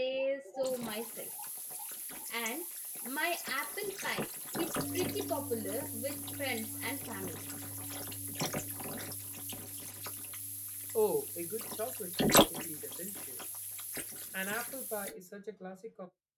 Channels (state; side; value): identical; both; correlation 1.00